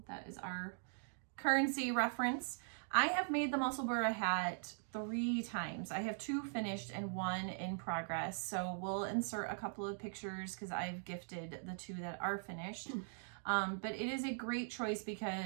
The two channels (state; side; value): silent; left; digital silence